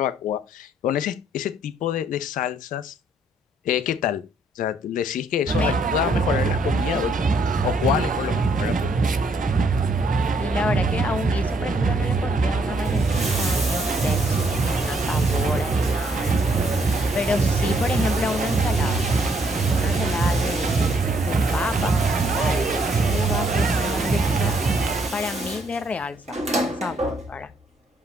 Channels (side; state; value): both; normal; correlation 0.69